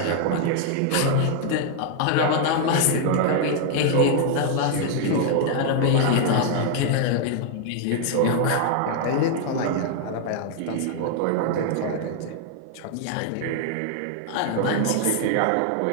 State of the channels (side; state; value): both; different; correlation 0.00